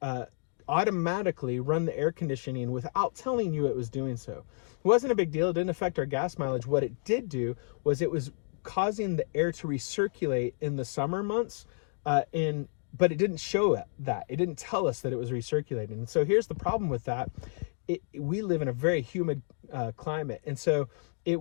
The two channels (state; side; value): silent; right; digital silence